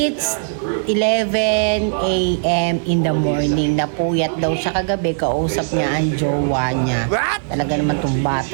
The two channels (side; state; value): left; silent; 57 dB below the other